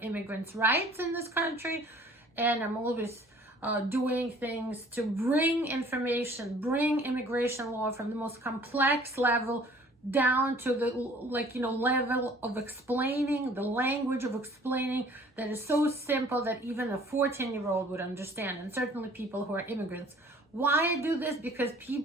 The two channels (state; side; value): normal; both; correlation 0.53